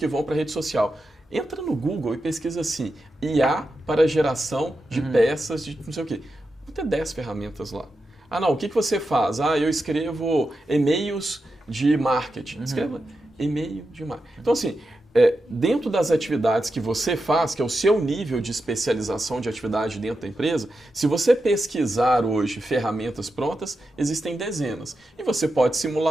vão para a rede social. Entra no Google e pesquisa assim, IA para geração de peças de não sei o quê. Vão ter 10 ferramentas lá. O que você faz? Eu escrevo e-mails de marketing. Escreva e-mail de marketing. Então, assim, dentro das atividades que você faz, que é o seu nível de especialização de atividade dentro da empresa, se você pesquisar hoje ferramentas prontas, existem dezenas. E você pode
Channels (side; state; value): both; normal; correlation 0.89